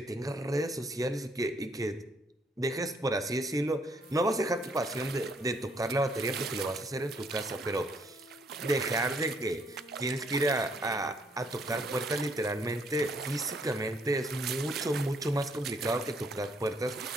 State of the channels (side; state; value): both; normal; correlation 0.68